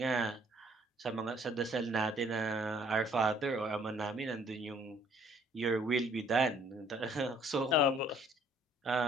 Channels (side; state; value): both; normal; correlation 0.60